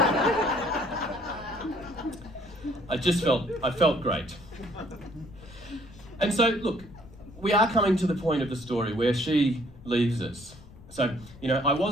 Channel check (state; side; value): noise; left; rumble, 20 dB below the sound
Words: I felt great. And so, look, we are coming to the point of the story where she leaves us. So, I